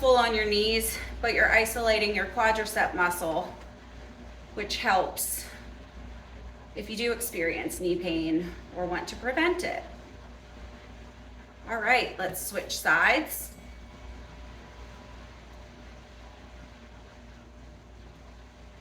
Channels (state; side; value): identical; both; correlation 1.00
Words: on your knees, but you're isolating your quadricep muscle, which helps if you do experience knee pain or want to prevent it. All right, let's switch sides.